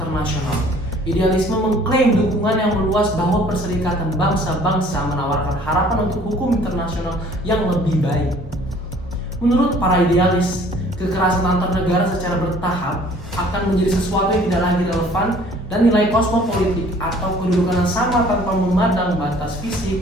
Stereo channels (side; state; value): both; normal; correlation 0.54